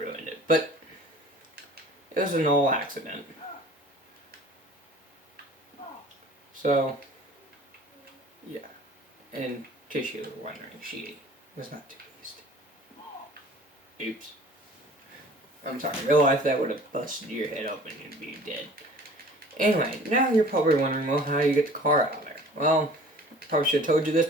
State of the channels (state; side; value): normal; both; correlation 0.47